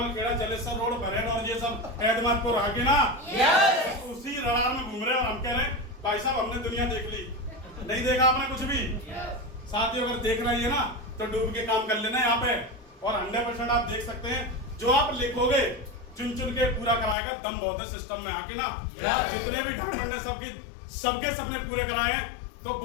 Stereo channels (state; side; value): drops out; right; at 17.2 s